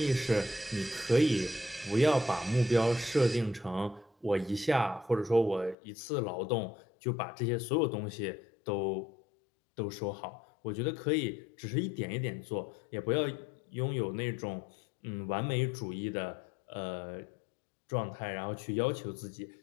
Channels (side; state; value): right; drops out; at 5.8 s